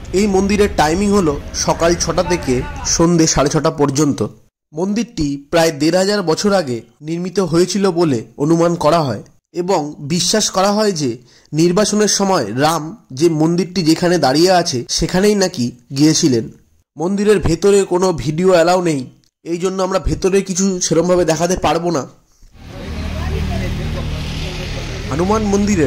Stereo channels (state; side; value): identical; both; correlation 1.00